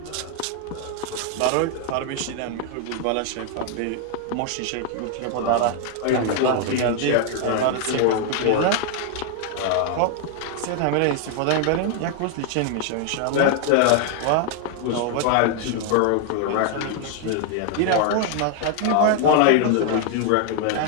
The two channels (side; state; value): both; different; correlation 0.00